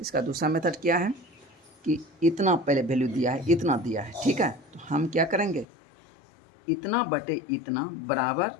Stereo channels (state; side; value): drops out; right; at 5.7 s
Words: मेथड क्या है कि इतना पहले वैल्यू दिया है, इतना दिया है, ठीक है। तो हम क्या करेंगे, इतना बटे इतना बराबर